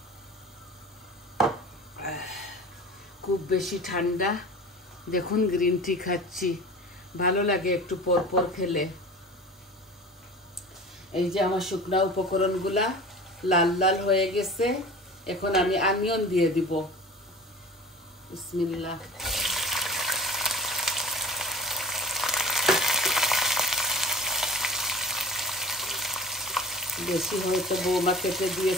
খুব বেশি ঠান্ডা, দেখুন গ্রিন টি খাচ্ছি, ভালো লাগে একটু পর পর খেলে। এই যে আমার শুকনা উপকরণগুলা লাল লাল হয়ে গেছে। এখন আমি অনিয়ন দিয়ে দিব। বিসমিল্লাহ। বেশি হয়তো বৌমা কেটে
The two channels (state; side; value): normal; both; correlation 0.39